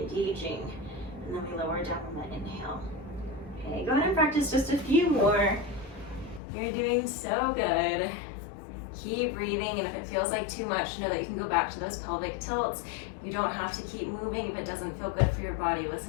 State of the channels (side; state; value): right; drops out; at 6.4 s